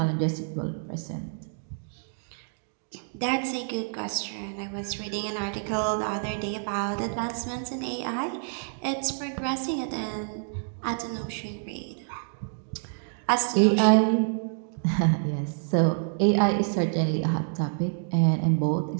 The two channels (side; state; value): left; silent; digital silence